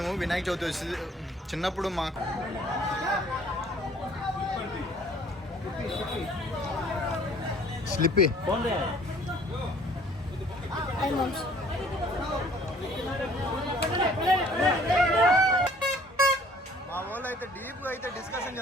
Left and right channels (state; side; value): normal; both; correlation 0.56